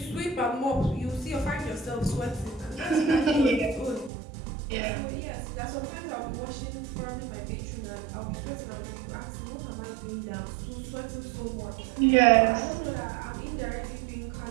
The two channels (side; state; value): left; drops out; at 4.1 s